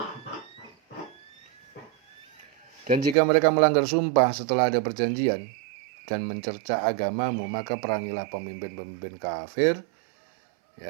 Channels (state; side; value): drops out; left; at 3.2 s